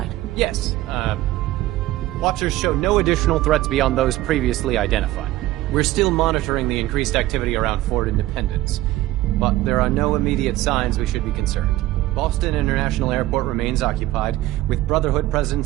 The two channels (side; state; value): left; quieter; 16.1 dB